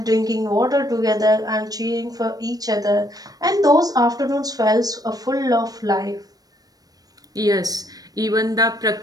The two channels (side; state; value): left; late; 0.18 ms